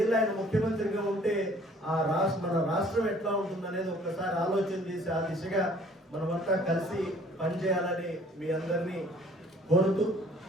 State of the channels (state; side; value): normal; both; correlation 0.55